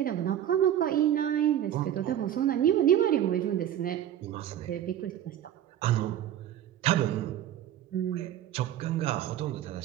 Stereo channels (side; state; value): left; quieter; 11.1 dB